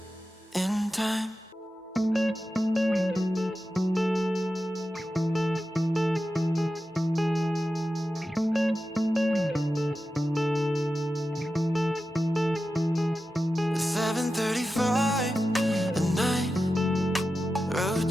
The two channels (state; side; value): normal; both; correlation 0.92